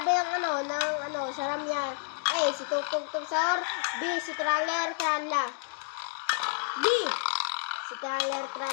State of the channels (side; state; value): right; silent; 58 dB below the other